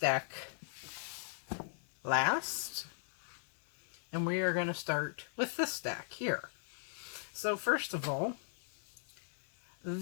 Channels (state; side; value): silent; right; 52 dB below the other